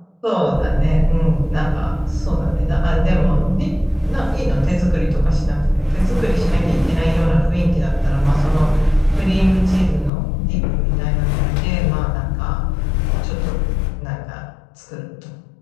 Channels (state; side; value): drops out; right; at 10.1 s